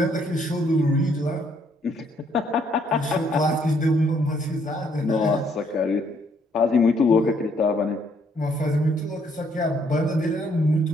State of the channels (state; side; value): normal; both; correlation 0.68